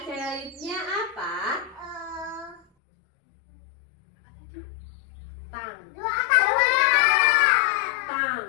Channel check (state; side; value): drops out; right; at 2.6 s